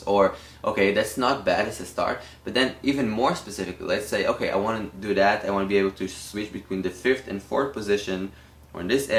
Or okay, that's not bad as a start, but then even more specifically, let's say, okay, I want to do that, I want to be able to switch between the 5th and 4th position, or in this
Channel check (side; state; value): both; identical; correlation 1.00